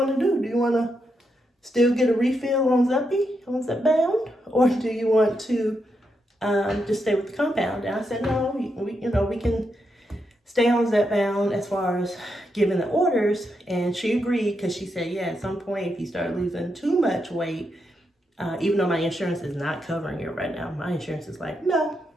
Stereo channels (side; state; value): both; normal; correlation 0.82